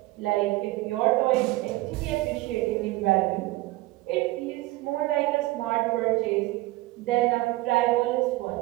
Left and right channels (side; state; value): left; quieter; 19.8 dB